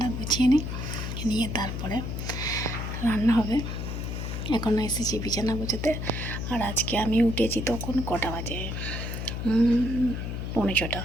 গুছিয়ে নিয়ে তারপরে রান্না হবে। এখন এসেছি বিছানা গুছোতে। আর আজকে আমি উঠেছি তখন কটা বাজে,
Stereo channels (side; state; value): left; noise; hum, 4 dB below the sound